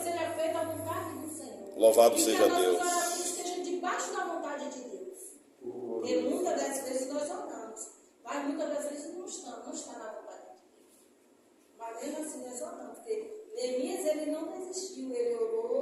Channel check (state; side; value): identical; both; correlation 1.00